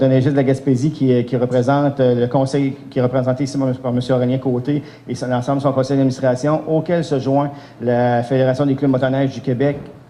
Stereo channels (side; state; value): both; identical; correlation 1.00